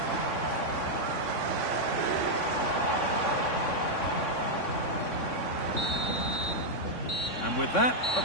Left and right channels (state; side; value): late; right; 3.6 ms